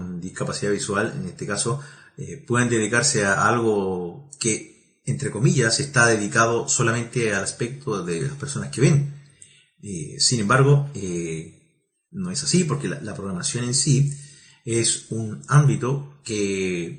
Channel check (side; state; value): both; identical; correlation 1.00